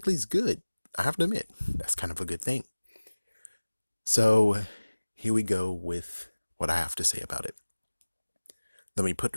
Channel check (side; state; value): both; inverted; correlation -1.00